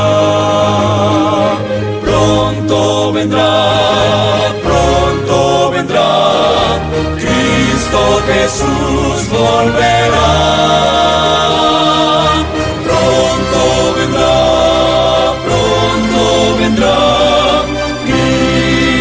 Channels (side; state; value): both; identical; correlation 1.00